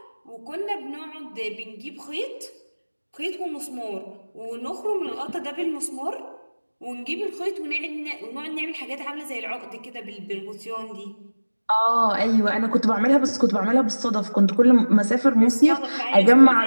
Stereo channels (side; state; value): both; inverted; correlation -1.00